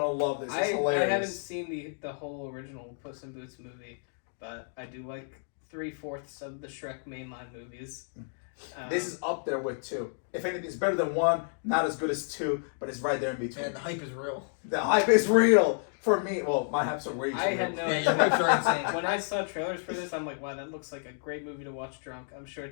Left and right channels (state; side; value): silent; right; digital silence